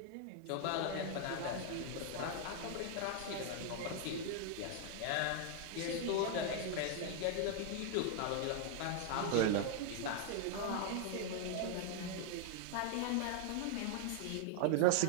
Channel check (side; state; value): both; different; correlation 0.00